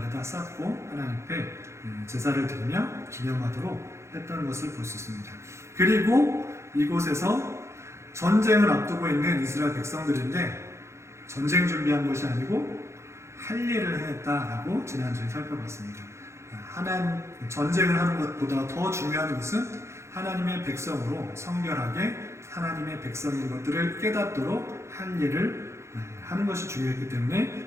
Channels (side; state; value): left; late; 0.13 ms